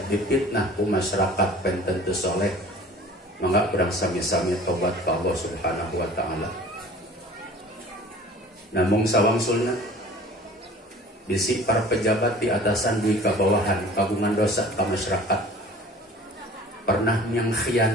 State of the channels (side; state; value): both; normal; correlation 0.46